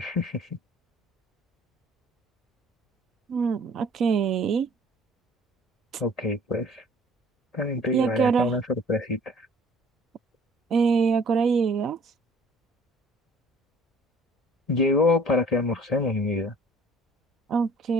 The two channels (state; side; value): normal; both; correlation 0.54